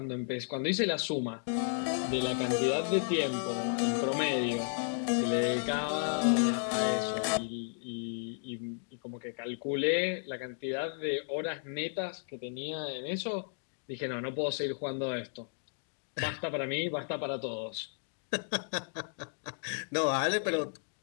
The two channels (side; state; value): right; silent; digital silence